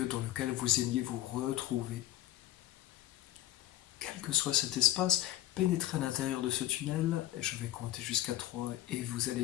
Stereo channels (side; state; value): right; quieter; 14.6 dB